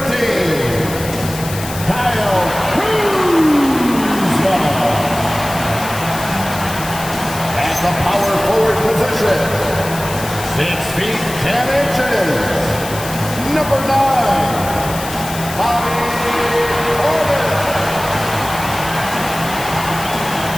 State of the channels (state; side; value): noise; left; hiss, 11 dB below the sound